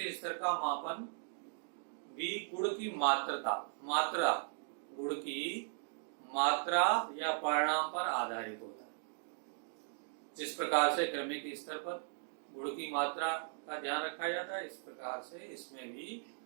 स्तर का मापन भी गुण की मात्रा या परिणाम पर आधारित होता है। जिस प्रकार से क्रमिक स्तर पर गुण की मात्रा का ध्यान रखा जाता है, इस प्रकार से इसमें भी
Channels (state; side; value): silent; left; digital silence